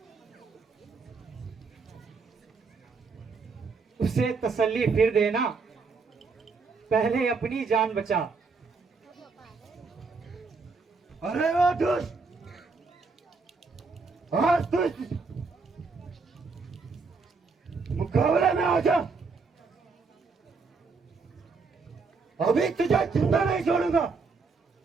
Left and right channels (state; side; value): quieter; left; 4.5 dB